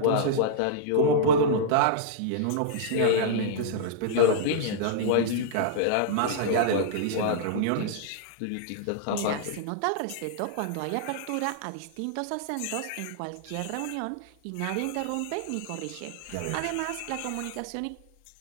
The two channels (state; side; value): different; both; correlation -0.01